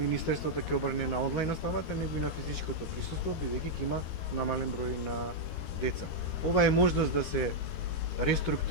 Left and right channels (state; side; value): late; right; 13 ms